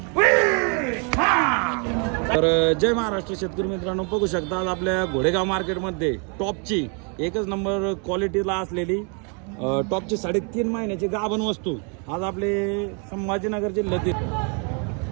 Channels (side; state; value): left; quieter; 36.7 dB